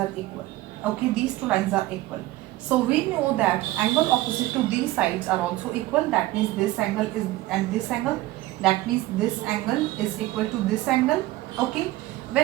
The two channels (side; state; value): left; quieter; 17.3 dB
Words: equal. Okay, these two lines are equal. So we know that angle opposite to these sides are also equal. That means this angle is and this angle. That means this angle is equal to this angle. Okay,